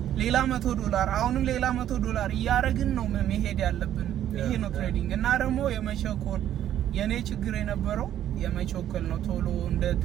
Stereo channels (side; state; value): left; quieter; 11.3 dB